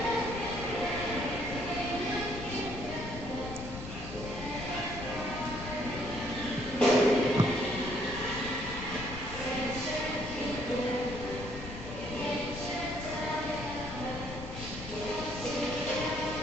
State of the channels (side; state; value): left; noise; rumble, 10 dB below the sound